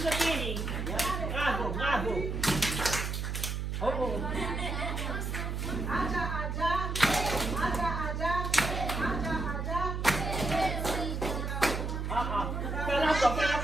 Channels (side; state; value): right; noise; hum, 2 dB below the sound